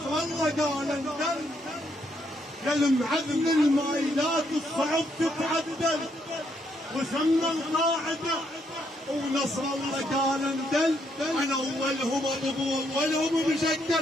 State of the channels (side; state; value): both; normal; correlation 0.74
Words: الله قال انزل، يا المعلم المايلات الصعب تتعدل وسمى القاعدة ونصر الله قال اندل. انا اولهم ابو اولهم